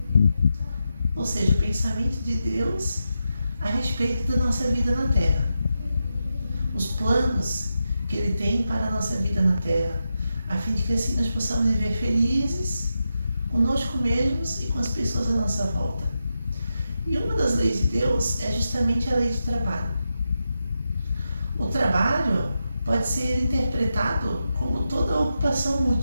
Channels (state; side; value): inverted; both; correlation -0.88